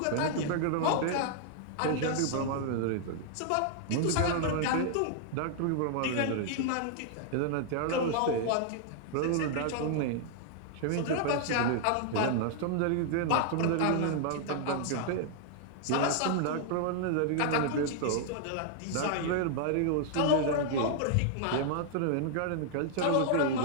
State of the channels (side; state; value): both; different; correlation -0.01